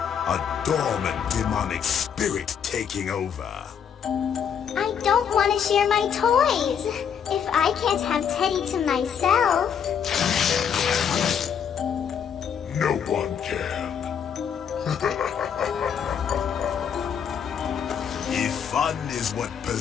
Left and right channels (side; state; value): right; quieter; 7.8 dB